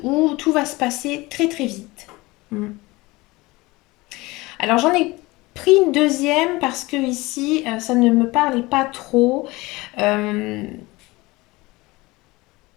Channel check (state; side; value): quieter; right; 21.9 dB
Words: où tout va se passer très très vite. Alors j'en ai pris une deuxième parce que ici, ça ne me parlait pas trop. Euh,